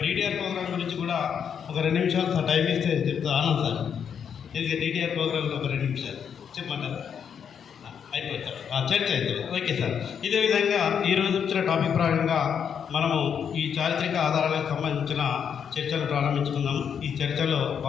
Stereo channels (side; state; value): right; quieter; 7.6 dB